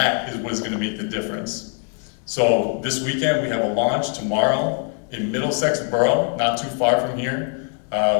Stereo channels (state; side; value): quieter; right; 39.5 dB